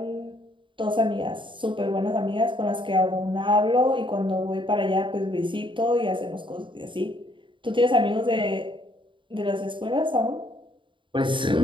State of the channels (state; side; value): late; left; 0.24 ms